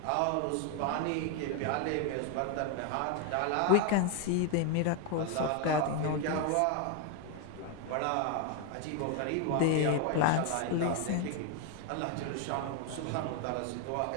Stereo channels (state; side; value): different; both; correlation 0.01